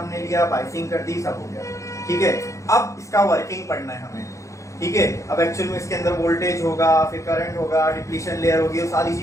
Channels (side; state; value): right; late; 0.15 ms